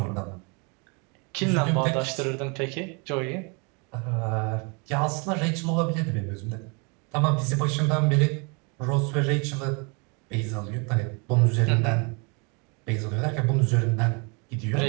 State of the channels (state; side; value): quieter; left; 32.8 dB